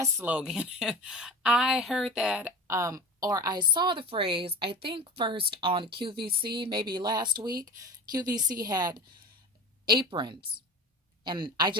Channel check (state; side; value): normal; both; correlation 0.33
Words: slogan. I heard that, or I saw the phrase, I think first on QVC, maybe last week. QVC had aprons, and I